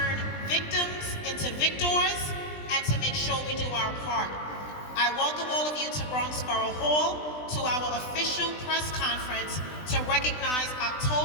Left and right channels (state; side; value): late; right; 20 ms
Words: victims into victors, and to make sure we do our part. I welcome all of you to Bronx Borough Hall to our official press conference to recognize